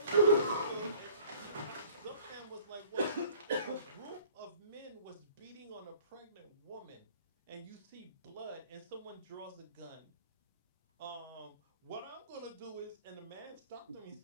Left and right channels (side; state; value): both; inverted; correlation -0.51